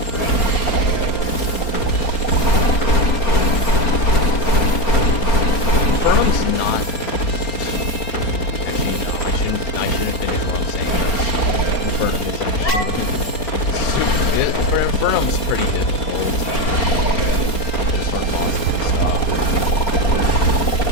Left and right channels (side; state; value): right; late; 4.3 ms